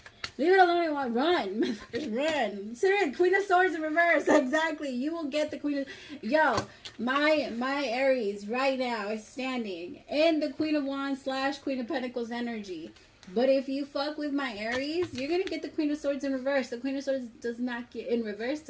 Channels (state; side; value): identical; both; correlation 1.00